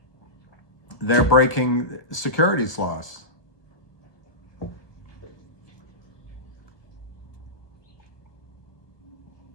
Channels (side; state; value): right; late; 1.2 ms